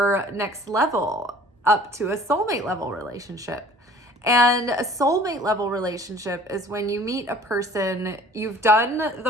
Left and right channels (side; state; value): both; normal; correlation 0.49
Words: next level up to a soulmate level relationship. And a soulmate level relationship is when you meet a person, you've done